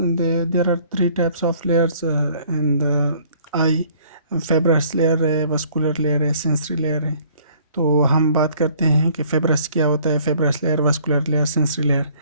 are three types of layers in the eye. Fibrous layer है, vascular layer है, sensory layer है. तो हम बात करते हैं कि फेब्रस क्या होता है, fibrous layer, vascular layer, sensory layer.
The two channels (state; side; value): inverted; both; correlation -0.58